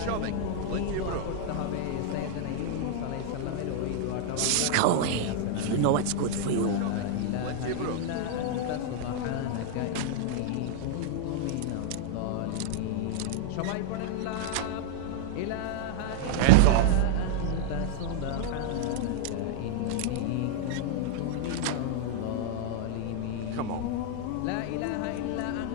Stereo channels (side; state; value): both; different; correlation 0.00